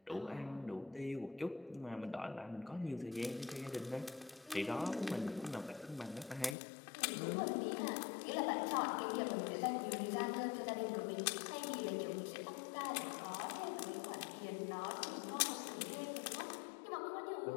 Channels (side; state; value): right; drops out; at 6.6 s